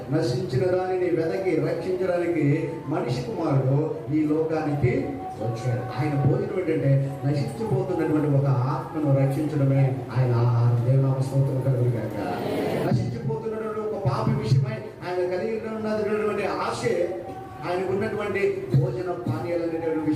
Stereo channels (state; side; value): identical; both; correlation 1.00